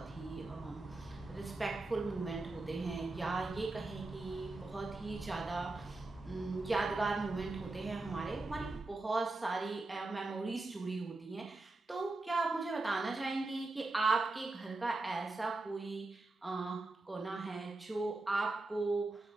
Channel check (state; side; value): quieter; left; 3.1 dB